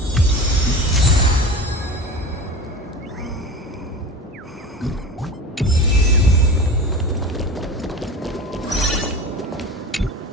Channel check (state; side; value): normal; both; correlation 0.32